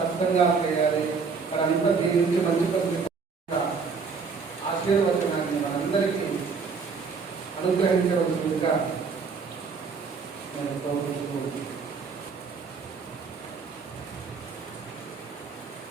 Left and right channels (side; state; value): left; quieter; 5.2 dB